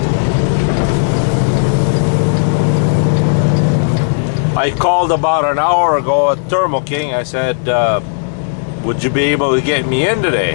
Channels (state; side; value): silent; right; digital silence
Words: I called about an hour ago at Thermo King. I said, would you be able to get me in today?